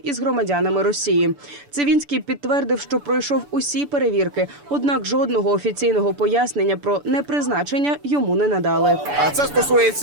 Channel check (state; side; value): late; left; 6.9 ms